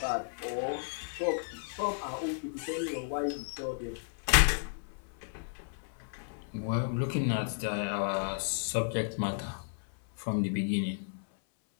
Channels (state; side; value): silent; right; 55 dB below the other